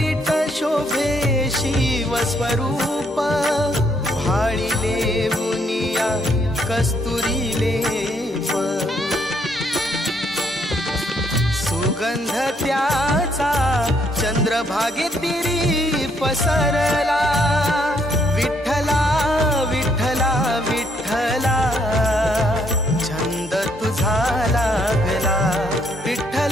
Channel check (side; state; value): both; normal; correlation 0.70